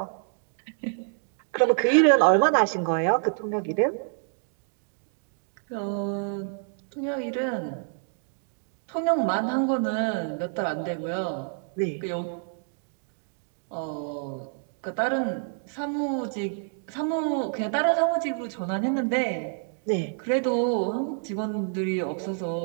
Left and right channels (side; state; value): left; silent; digital silence